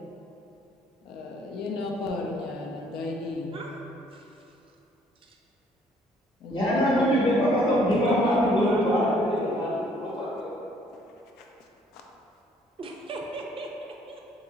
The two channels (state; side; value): normal; both; correlation 0.62